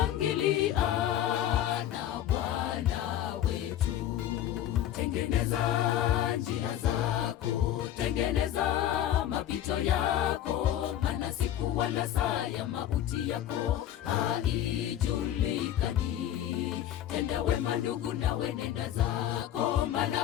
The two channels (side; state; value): right; quieter; 11.6 dB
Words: na Bwana wetu. Tengeneza njia zako, tengeneza mapito yako, maana siku wala saa ya mauti yako haijulikani. Tenda wema ndugu, nawe nenda zako,